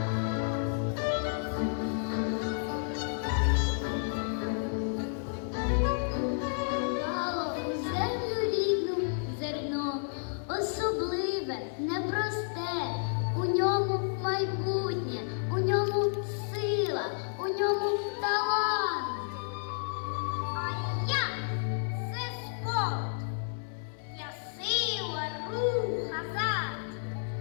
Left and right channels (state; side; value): silent; right; 57 dB below the other